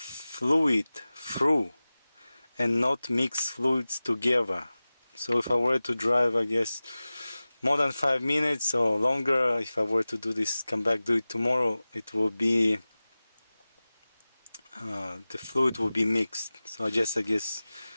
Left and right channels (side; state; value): both; inverted; correlation -0.97